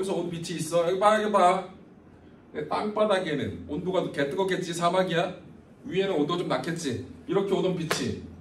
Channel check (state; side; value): identical; both; correlation 1.00